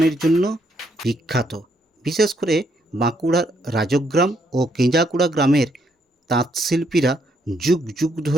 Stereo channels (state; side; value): normal; both; correlation 0.73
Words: জন্য বিখ্যাত। বিশেষ করে বাঁকুড়ার রাজগ্রাম ও কেঞ্জাকুড়া গ্রামের তাঁতশিল্পীরা যুগ যুগ